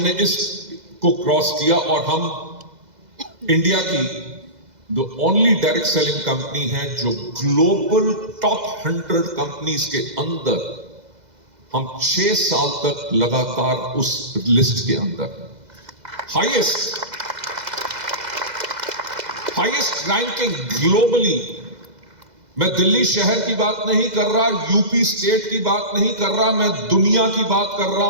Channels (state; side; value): late; left; 2.0 ms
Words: इसको क्रॉस किया और हम इंडिया की the only direct selling company है जो ग्लोबल टॉप 100 कंपनीज के अंदर हम 6 साल तक लगातार उस लिस्ट के अंदर हाईएस्ट रैंकिंग ग्लोबली। मैं दिल्ली शहर की बात नहीं कर रहा, यूपी स्टेट की बात नहीं कर रहा, मैं दुनिया की बात कर